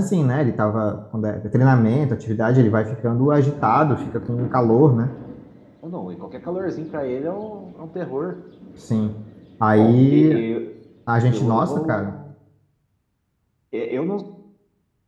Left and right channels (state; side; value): identical; both; correlation 1.00